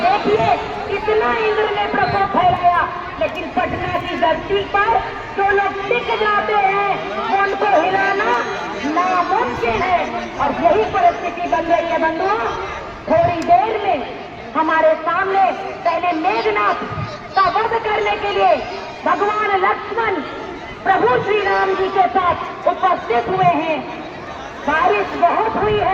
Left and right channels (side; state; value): both; identical; correlation 1.00